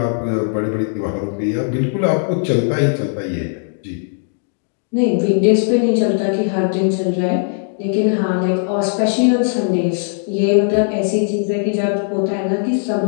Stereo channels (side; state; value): right; silent; digital silence